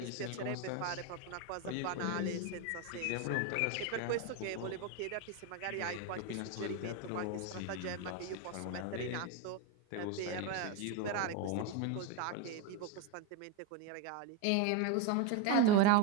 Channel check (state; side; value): different; both; correlation 0.03